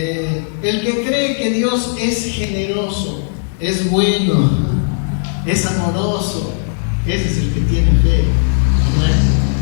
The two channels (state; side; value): silent; right; digital silence